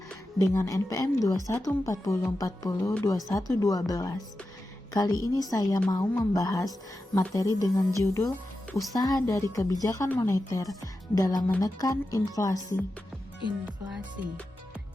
dengan NPM 2140402112. Kali ini saya mau membahas materi dengan judul Usaha dari Kebijakan Moneter dalam Menekan Inflasi.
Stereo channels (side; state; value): both; normal; correlation 0.91